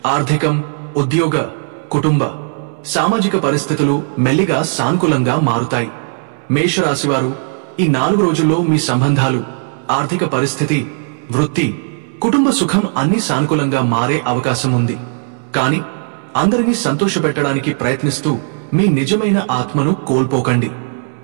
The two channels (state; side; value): silent; left; 65 dB below the other